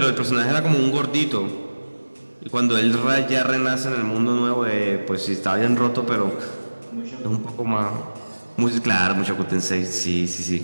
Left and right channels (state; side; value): inverted; both; correlation -1.00